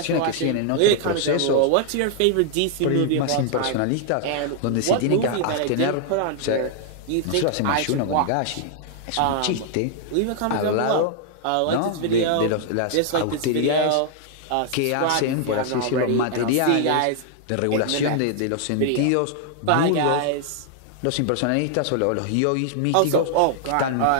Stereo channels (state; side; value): different; both; correlation 0.00